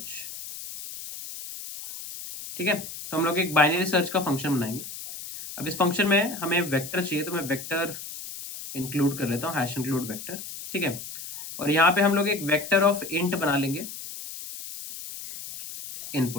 ठीक है। तो हम लोग एक बाइनरी सर्च का फंक्शन बनाएंगे। अब इस फंक्शन में हमें वेक्टर चाहिए, तो मैं वेक्टर इंक्लूड कर लेता हूँ, हैश इंक्लूड वेक्टर, ठीक है। और यहाँ पे हम लोग एक वेक्टर ऑफ इंट बना लेंगे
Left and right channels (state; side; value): noise; left; hiss, 10 dB below the sound